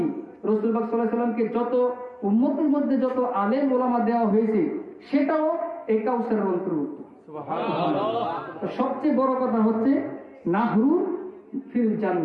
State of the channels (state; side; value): identical; both; correlation 1.00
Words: রাসূল পাক সাল্লাল্লাহু আলাইহি সাল্লামকে যত উম্মতের মধ্যে যত আলেম উলামা দেওয়া হয়েছে সেটাও এই কাউসারের অন্তর্ভুক্ত। সুবহানাল্লাহ। সবচেয়ে বড় কথা হচ্ছে নাহরু ফিল